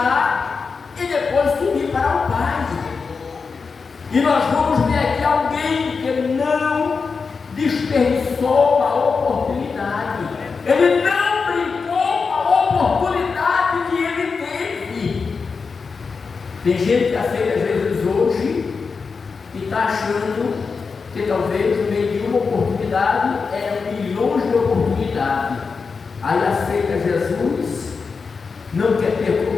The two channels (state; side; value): quieter; right; 5.0 dB